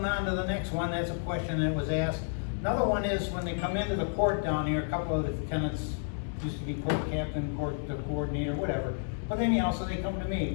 on to the next one, that's a question that was asked. Another one is when they come into the court down here, a couple of the tenants used to be court captain, court coordinator, whatever. But anyhow, so they come to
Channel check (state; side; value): silent; right; digital silence